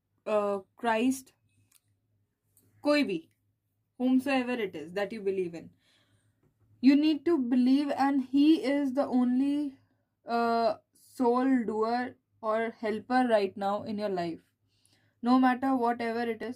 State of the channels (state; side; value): identical; both; correlation 1.00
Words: Christ, कोई भी, whomsoever it is that you believe in, you need to believe, and he is the only soul doer or helper right now in your life. No matter whatever it